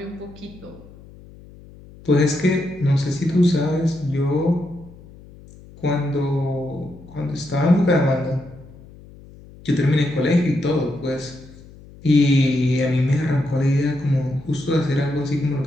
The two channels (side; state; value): left; noise; hum, 21 dB below the sound